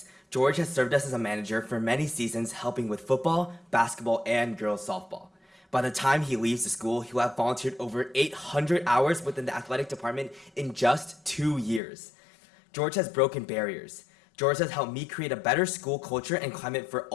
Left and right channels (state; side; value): drops out; right; at 11.8 s